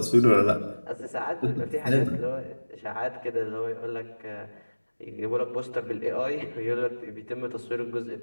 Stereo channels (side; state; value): both; inverted; correlation -1.00